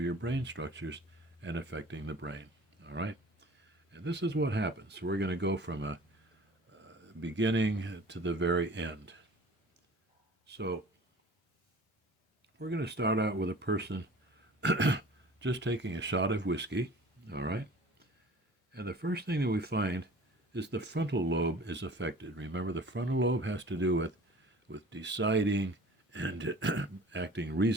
your brain structures and affecting the brain, all right? And this is what happens. So we're going to go from a beginning to the very end. So we're going to start out with a person just taking a shot of whiskey, all right? And the first thing that we find is the frontal lobe is affected. Remember, the frontal lobe has to do with deciding and acting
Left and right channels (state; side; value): normal; both; correlation 0.44